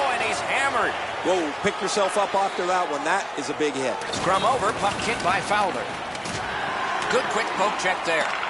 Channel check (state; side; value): identical; both; correlation 1.00